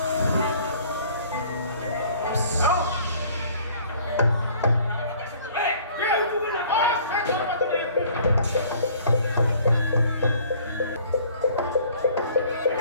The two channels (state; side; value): inverted; both; correlation -0.54